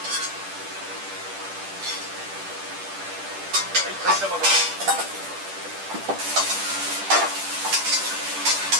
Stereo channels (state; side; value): late; left; 10 ms